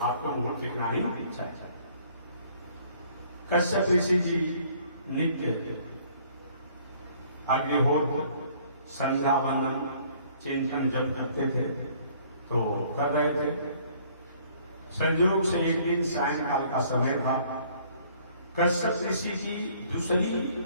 आपको मुहूर्त दिखना ही चाहिए। कश्यप ऋषि जी नित्य अग्निहोत्र संध्या वंदन चिंतन जब करते थे तो कर रहे थे। संयोग से एक दिन सायंकाल का समय था। कश्यप ऋषि की दूसरी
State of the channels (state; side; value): inverted; both; correlation -0.59